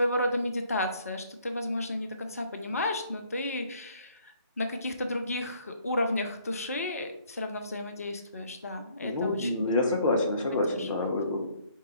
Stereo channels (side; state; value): both; inverted; correlation -0.62